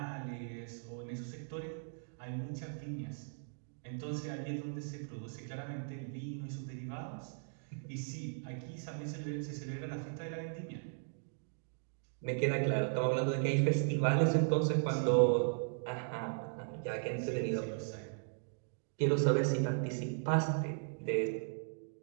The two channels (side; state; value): left; silent; digital silence